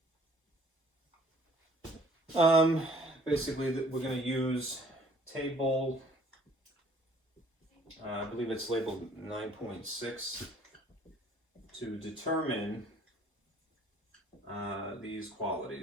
Basically, we're going to use table, I believe it's labeled 9.6, to determine these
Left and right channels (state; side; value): normal; both; correlation 0.57